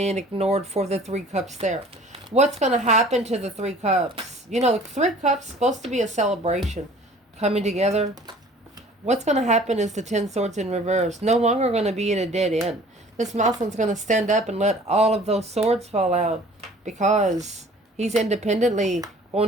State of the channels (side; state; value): both; normal; correlation 0.50